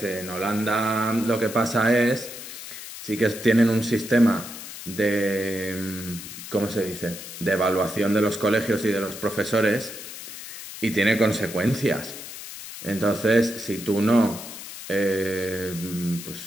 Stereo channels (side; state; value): left; noise; hiss, 11 dB below the sound